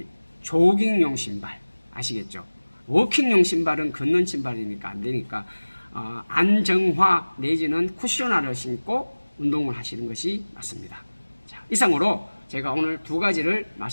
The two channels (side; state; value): both; inverted; correlation -1.00